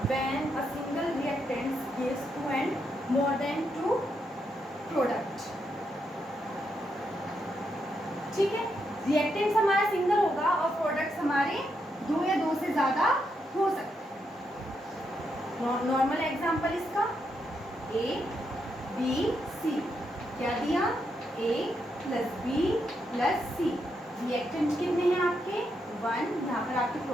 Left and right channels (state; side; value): normal; both; correlation 0.81